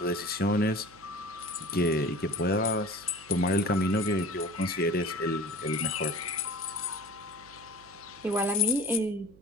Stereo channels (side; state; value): right; noise; hum, 24 dB below the sound